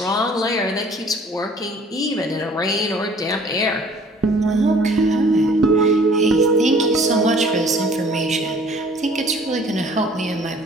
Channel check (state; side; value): normal; both; correlation 0.53